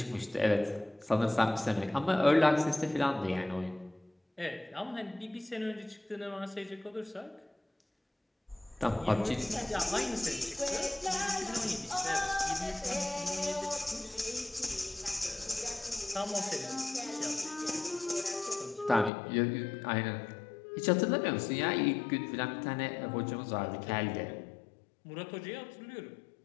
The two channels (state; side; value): drops out; right; at 19.1 s